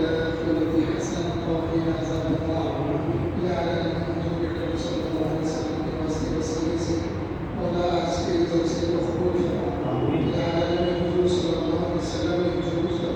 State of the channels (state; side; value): identical; both; correlation 1.00